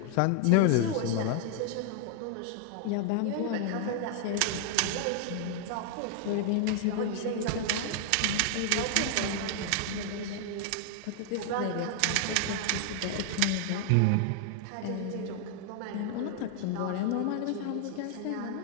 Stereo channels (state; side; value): different; both; correlation 0.00